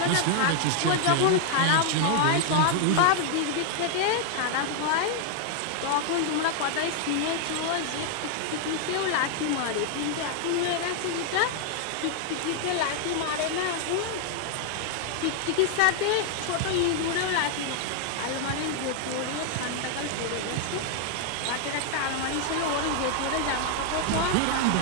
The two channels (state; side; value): different; both; correlation 0.00